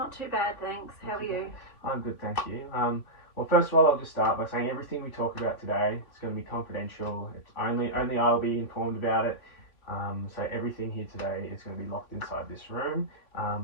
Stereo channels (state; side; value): late; right; 3.2 ms